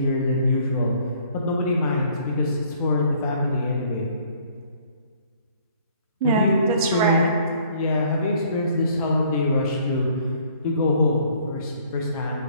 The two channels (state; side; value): inverted; both; correlation -0.59